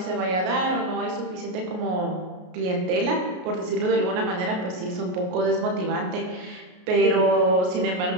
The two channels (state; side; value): late; left; 33 ms